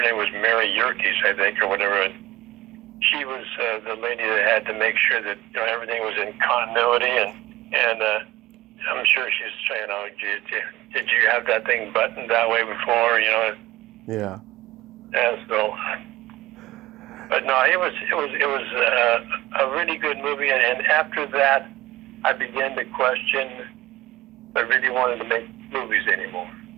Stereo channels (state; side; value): quieter; left; 17.2 dB